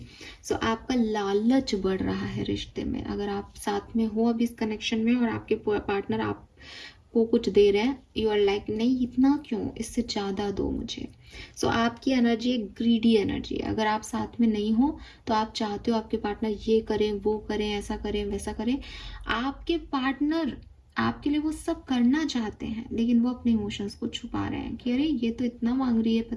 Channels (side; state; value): both; identical; correlation 1.00